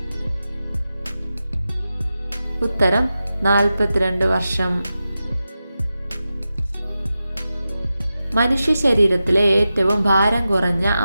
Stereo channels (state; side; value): inverted; both; correlation -0.92